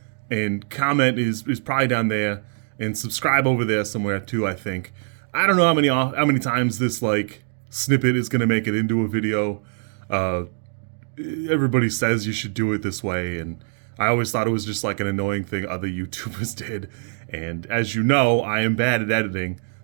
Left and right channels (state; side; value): silent; left; 57 dB below the other